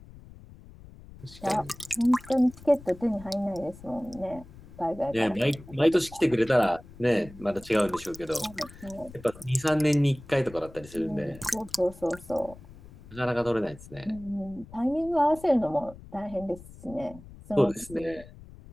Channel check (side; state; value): left; noise; rumble, 19 dB below the sound